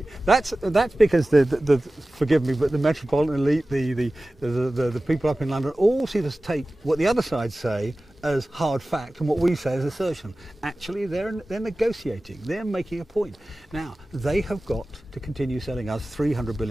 That's because the forgive me, but the metropolitan elite, the people up in London, all see us take what the other side say as hard fact and what we say as assertion. Actually, they're negotiating. They're making a point. Now, they have got to continue selling us 300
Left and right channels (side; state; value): both; normal; correlation 0.97